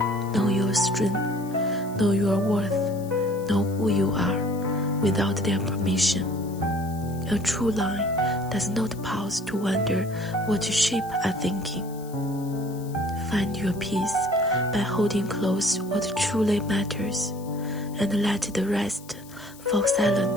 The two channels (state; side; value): noise; left; hiss, 21 dB below the sound